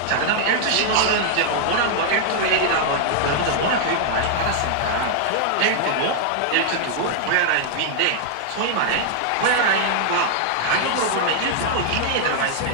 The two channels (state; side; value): different; both; correlation -0.01